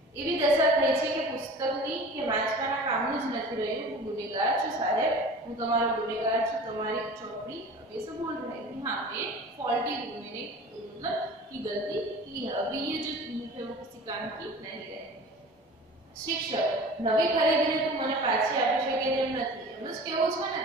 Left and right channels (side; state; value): both; normal; correlation 0.40